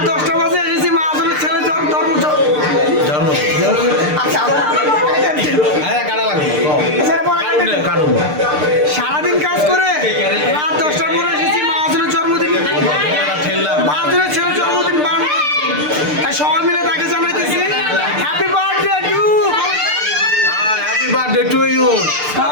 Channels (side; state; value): left; late; 6.7 ms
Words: 10টা বাজে এসেছি মাহাজনের ছেলে ধর্ম সারাদিন কাজ করে রাত 10টার পরে এসেছি মাহাজনের জন্মদিন মাহাজনের ছেলের জন্মদিন তাই সবাই মিলে তাকে জানাইতেছি happy birthday to happy birthday to you.